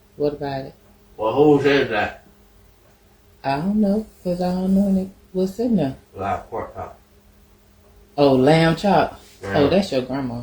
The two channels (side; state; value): both; identical; correlation 1.00